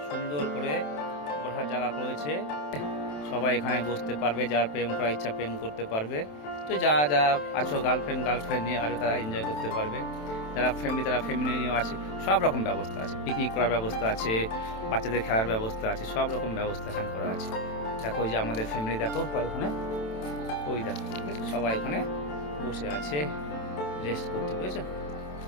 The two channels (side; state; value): right; late; 27 ms